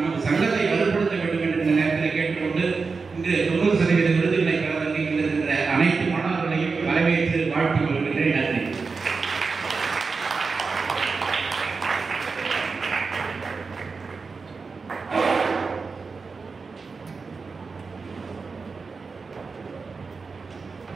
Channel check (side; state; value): left; quieter; 4.6 dB